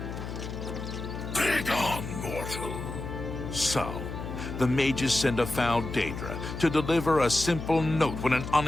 Begone, mortal. So, the mages send a foul Daedra to deliver a simple note when an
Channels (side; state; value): left; noise; hum, 7 dB below the sound